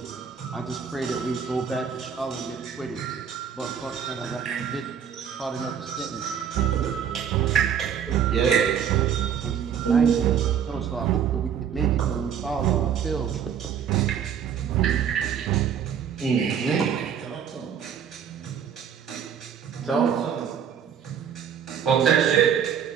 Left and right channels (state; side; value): quieter; left; 8.1 dB